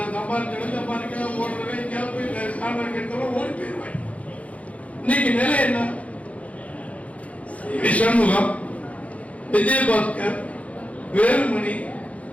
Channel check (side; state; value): right; late; 0.066 ms